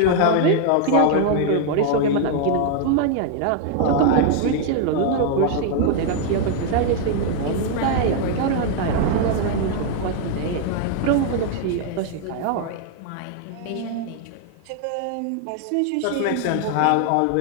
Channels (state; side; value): different; both; correlation 0.00